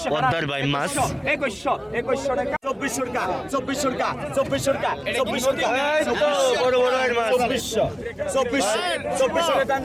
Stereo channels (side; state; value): both; identical; correlation 1.00